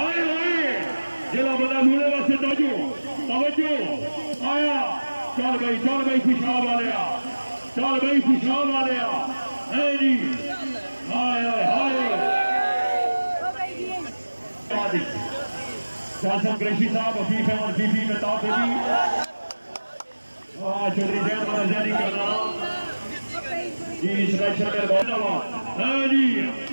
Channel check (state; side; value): inverted; both; correlation -1.00